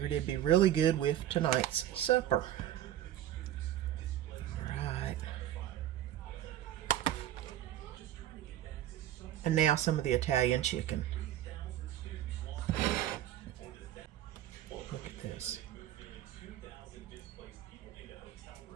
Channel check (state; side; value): quieter; left; 12.4 dB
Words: it'd be really good with tonight's supper. All right. And now some of the Italian chicken. Look at this.